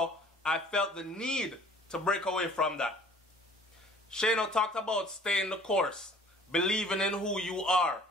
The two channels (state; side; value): normal; both; correlation 0.52